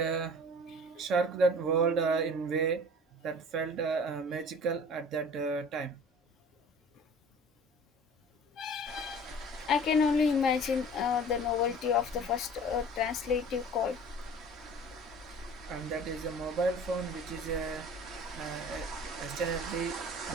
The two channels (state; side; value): normal; both; correlation 0.44